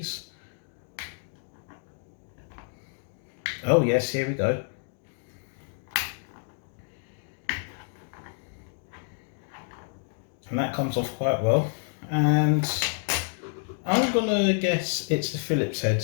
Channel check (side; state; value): right; silent; 59 dB below the other